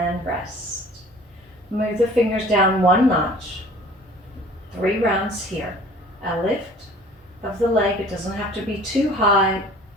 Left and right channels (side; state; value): both; normal; correlation 0.48